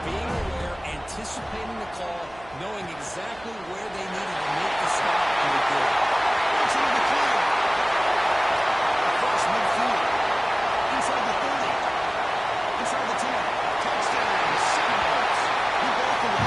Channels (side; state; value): right; noise; hum, 22 dB below the sound